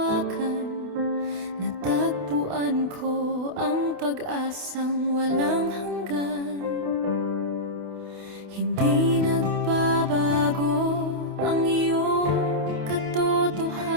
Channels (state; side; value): late; left; 28 ms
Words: natagpuan ko ang pag-asang walang hanggan. Hindi nagbabago ang iyong